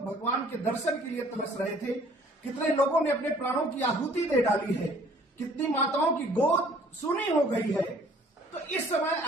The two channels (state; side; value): normal; both; correlation 0.56